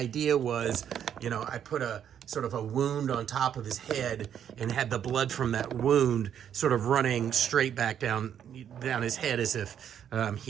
was, I put a sort of a wound on top of his head and had the blood from that wound sort of running straight back down his head, as if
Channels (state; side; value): quieter; left; 9.2 dB